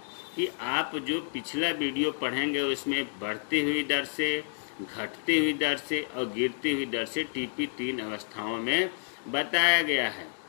कि आप जो पिछला वीडियो पढ़ेंगे उसमें बढ़ती हुई दर से, घटती हुई दर से और गिरती हुई दर से टीपी 3 अवस्थाओं में बताया गया है।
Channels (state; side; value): silent; right; digital silence